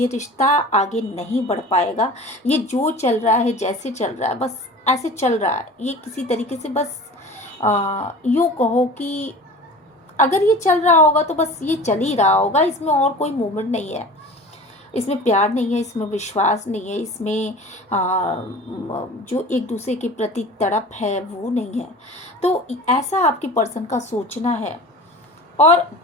रिश्ता आगे नहीं बढ़ पाएगा। ये जो चल रहा है, जैसे चल रहा है, बस ऐसे चल रहा है। ये किसी तरीके से बस यूँ कहो कि अगर ये चल रहा होगा तो बस ये चल ही रहा होगा, इसमें और कोई मूवमेंट नहीं है, इसमें प्यार नहीं है, इसमें विश्वास नहीं है, इसमें जो एक दूसरे के प्रति तड़प है वो नहीं है। तो ऐसा आपके पर्सन का सोचना है। और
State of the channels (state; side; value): normal; both; correlation 0.38